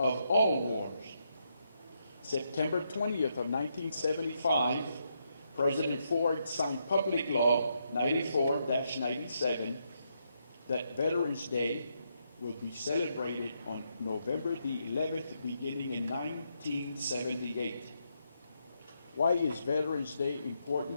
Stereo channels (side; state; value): both; inverted; correlation -0.79